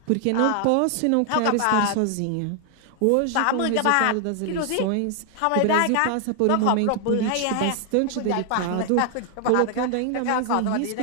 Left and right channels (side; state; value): both; different; correlation 0.00